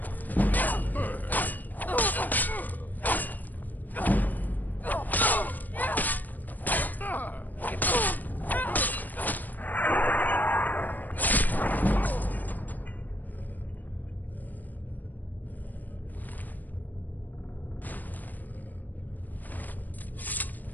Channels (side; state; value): right; late; 0.085 ms